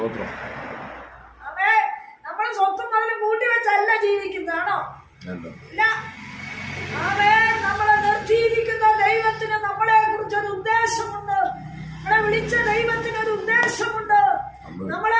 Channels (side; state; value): both; identical; correlation 1.00